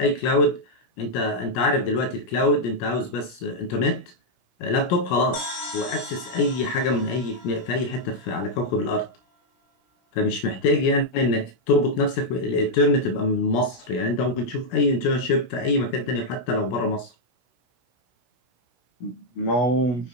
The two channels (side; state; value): right; late; 17 ms